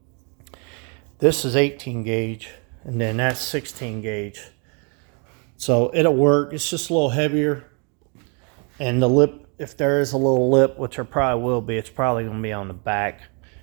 this is 18 gauge, and then that's 16 gauge. So it'll work. It's just a little heavier, and the lip, if there is a little lip, which there probably will be, it's probably going to be on the back,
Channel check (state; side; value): quieter; left; 35.8 dB